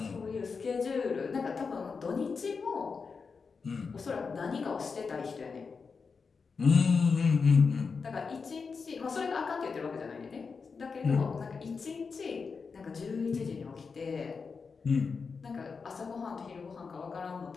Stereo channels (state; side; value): quieter; right; 5.1 dB